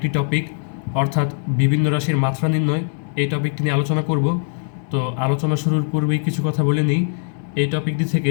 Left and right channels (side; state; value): right; silent; digital silence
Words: টপিক অর্থাৎ বিভিন্ন রাশির মাত্রা নির্ণয় এই টপিকটি নিয়ে আলোচনা করব। তো আলোচনা শুরুর পূর্বেই কিছু কথা বলে নিই। এই টপিকটি